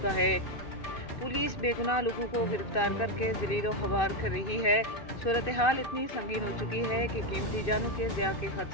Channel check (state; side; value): late; right; 2.6 ms